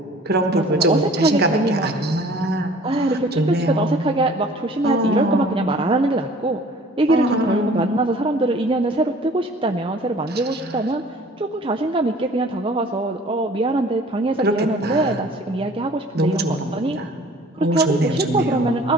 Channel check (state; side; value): normal; both; correlation 0.50